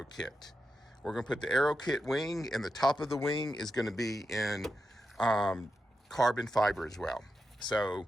kit. We're going to put the Aero kit wing, and the top of the wing is going to be in carbon fiber as well. So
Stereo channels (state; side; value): normal; both; correlation 0.89